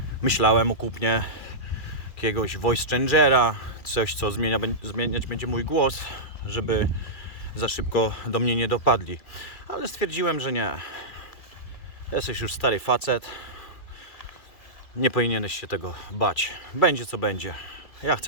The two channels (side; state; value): right; late; 2.3 ms